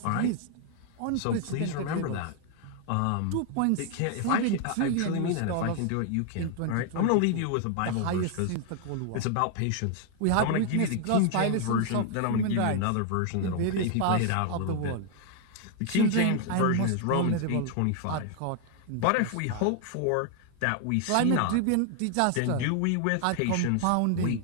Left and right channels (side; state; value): both; different; correlation 0.00